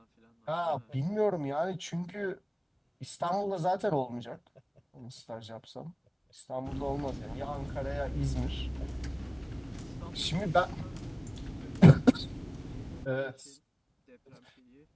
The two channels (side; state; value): both; identical; correlation 1.00